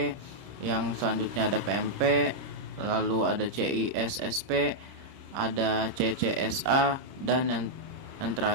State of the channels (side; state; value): left; late; 30 ms